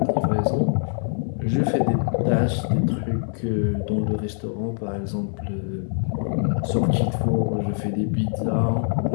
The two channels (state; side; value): silent; right; 63 dB below the other